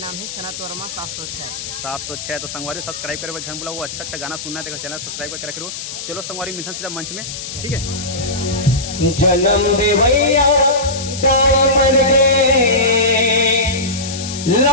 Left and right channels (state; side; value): noise; left; hiss, 8 dB below the sound